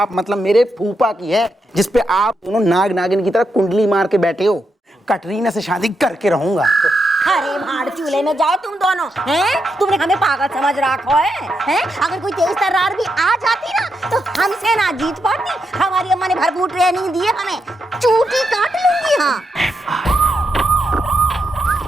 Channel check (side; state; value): both; normal; correlation 0.83